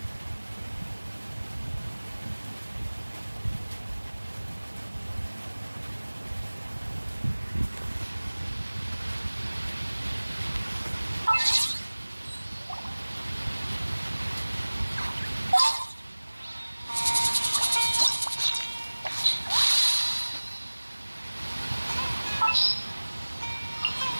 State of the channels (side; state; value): both; inverted; correlation -1.00